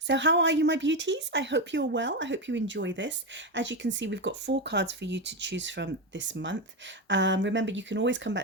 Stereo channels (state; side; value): normal; both; correlation 0.12